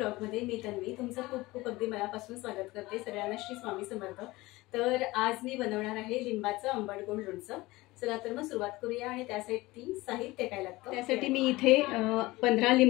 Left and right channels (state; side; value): quieter; right; 20.2 dB